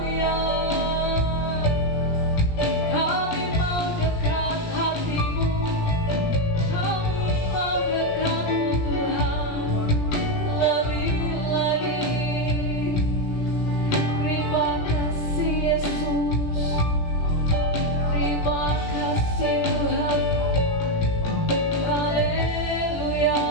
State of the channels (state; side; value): late; right; 17 ms